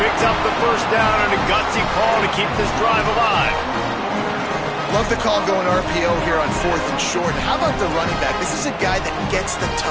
picks up the first down, and a gutsy call to keep this drive alive. Love the call going RPO here on 4th and short. How about the running back? This is a guy that gets the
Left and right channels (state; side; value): identical; both; correlation 1.00